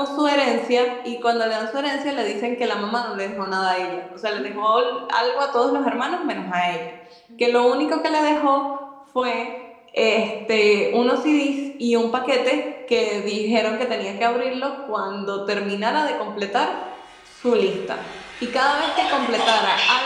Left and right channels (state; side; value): identical; both; correlation 1.00